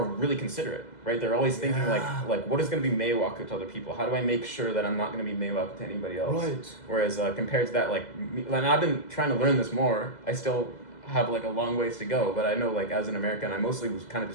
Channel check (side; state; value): right; late; 2.0 ms